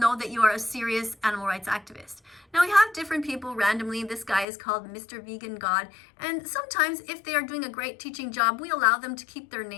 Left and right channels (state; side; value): drops out; right; at 4.5 s